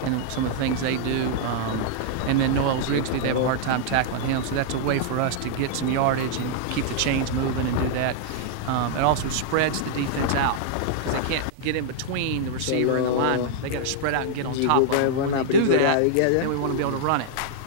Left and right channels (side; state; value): both; different; correlation -0.01